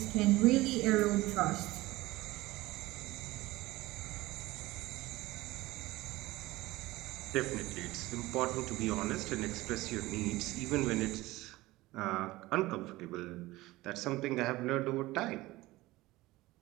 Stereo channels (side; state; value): left; quieter; 18.9 dB